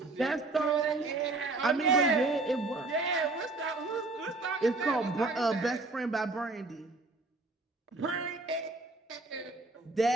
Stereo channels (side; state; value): left; quieter; 3.3 dB